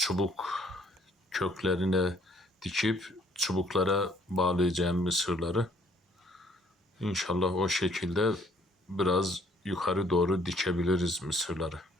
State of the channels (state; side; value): normal; both; correlation 0.62